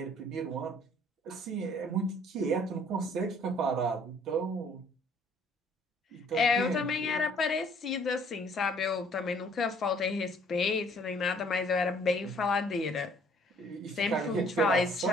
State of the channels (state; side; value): normal; both; correlation 0.59